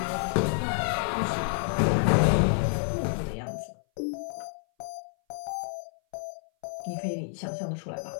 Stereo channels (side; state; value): right; silent; 57 dB below the other